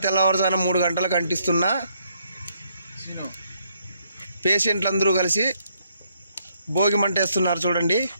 తెల్లవారుజాన 3 గంటలకు అంటిస్తున్న పేషెంట్లందరూ కలిసి భోగిమంట వేస్తున్నారు చూడండి.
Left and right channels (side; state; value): both; inverted; correlation -0.72